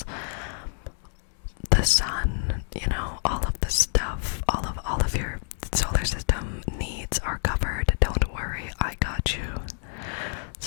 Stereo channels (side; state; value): right; silent; digital silence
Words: the sun, all of the stuff, all of your solar system needs are covered. Don't worry, I got you.